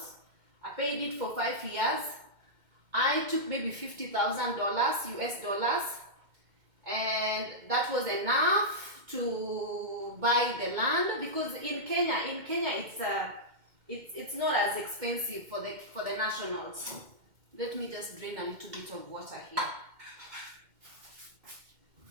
I paid it for 5 years. I took maybe $50,000 US dollars, and that was enough to buy the land, because in Kenya it's not as expensive for the nationals. Let me just drain a little bit of water here.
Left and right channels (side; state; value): left; late; 2.1 ms